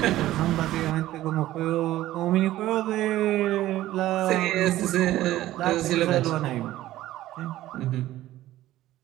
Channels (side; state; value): left; quieter; 14.8 dB